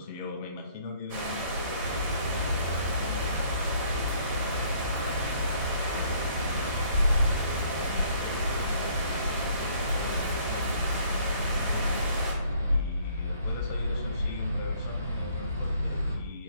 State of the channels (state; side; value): inverted; both; correlation -0.61